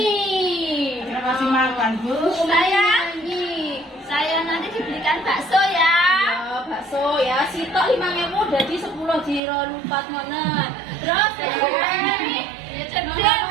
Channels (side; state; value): left; drops out; at 9.4 s